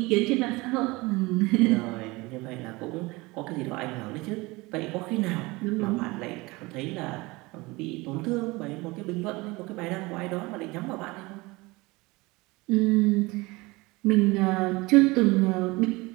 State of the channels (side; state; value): left; quieter; 23.0 dB